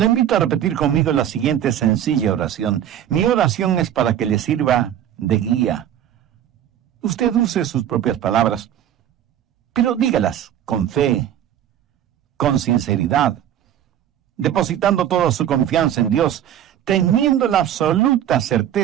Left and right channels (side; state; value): left; quieter; 10.6 dB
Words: invito a repetir conmigo la siguiente sencilla oración. Mi oración es para que le sirva de guía. Usted use sus propias palabras, pero dígalas con fe, con sinceridad, depositando toda su confianza en Dios, teniendo la absoluta